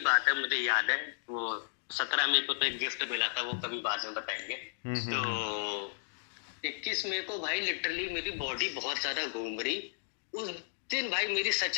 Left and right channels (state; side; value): silent; right; digital silence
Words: बात है, मुझे याद है। वो 17 मई को तो एक गिफ्ट मिला था, वो कभी बाद में बताएंगे। तो 21 मई को भाई लिटरली मेरी बॉडी बहुत ज्यादा घूम रही। उस दिन भाई मेरी